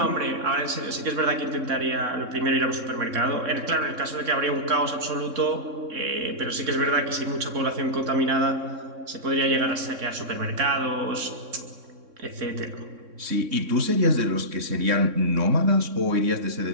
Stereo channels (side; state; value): left; late; 3.6 ms